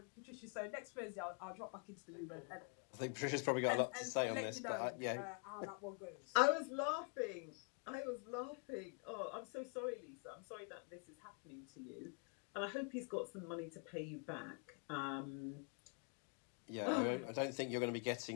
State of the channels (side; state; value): right; quieter; 35.3 dB